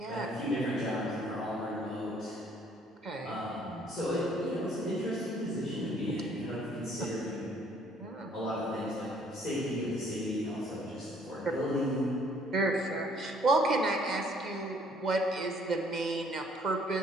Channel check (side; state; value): both; normal; correlation 0.61